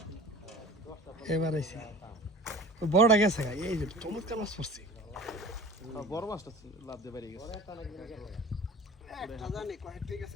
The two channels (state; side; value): normal; both; correlation 0.40